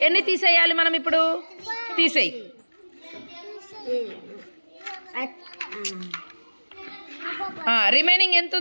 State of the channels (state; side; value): inverted; both; correlation -1.00